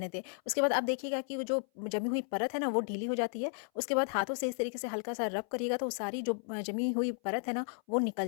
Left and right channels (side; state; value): right; silent; 55 dB below the other